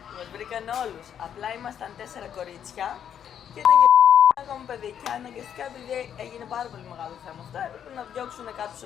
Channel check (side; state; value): right; quieter; 9.0 dB